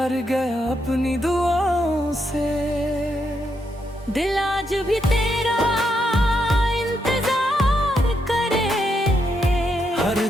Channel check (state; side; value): normal; both; correlation 0.80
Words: गया अपनी दुआओं से। दिल आज भी तेरा इंतजार करे, हर